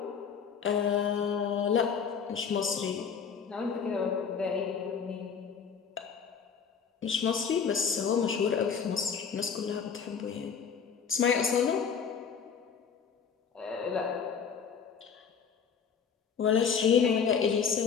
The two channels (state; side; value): quieter; right; 6.6 dB